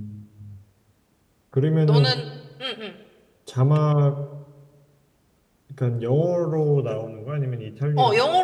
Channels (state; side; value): identical; both; correlation 1.00